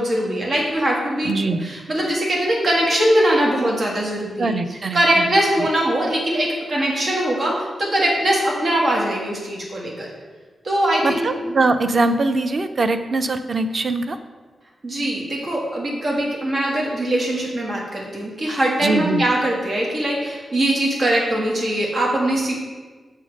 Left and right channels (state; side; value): normal; both; correlation 0.87